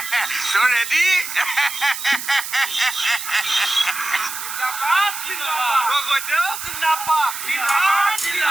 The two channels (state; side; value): noise; right; hiss, 7 dB below the sound